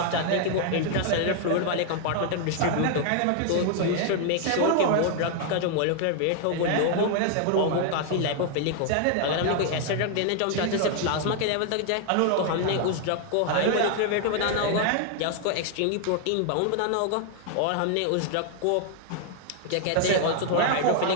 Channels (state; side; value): different; both; correlation 0.00